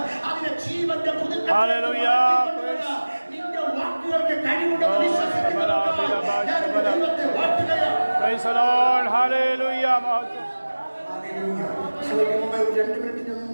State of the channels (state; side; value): inverted; both; correlation -1.00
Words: അതിനെ ജീവന്റെ പുതുക്ക നിന്റെ വാക്കുകൾക്ക് കഴിവുണ്ടെന്ന് വിശ്വസിക്കുന്നവർക്ക് ദൈവത്തെ വാഴ്ത്തുകയാണ്. വർഷങ്ങൾക്ക് മുമ്പ് 2 മിനിറ്റ് ഞാൻ